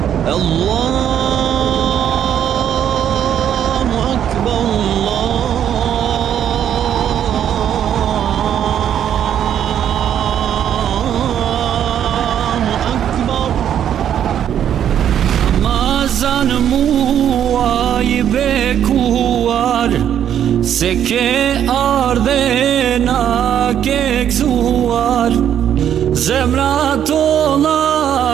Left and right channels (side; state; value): left; quieter; 9.7 dB